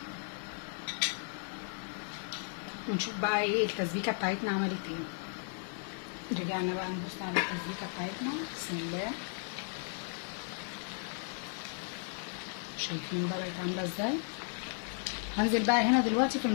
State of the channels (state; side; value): silent; right; 54 dB below the other